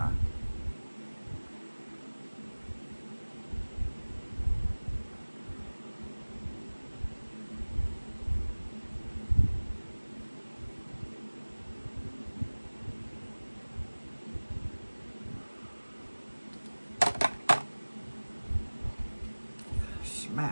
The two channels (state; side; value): inverted; both; correlation -1.00